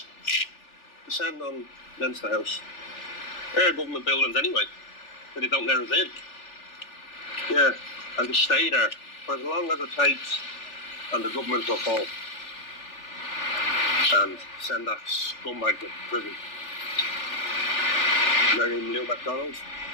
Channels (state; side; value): late; right; 3.4 ms